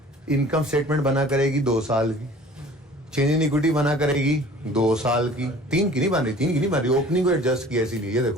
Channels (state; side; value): normal; both; correlation 0.47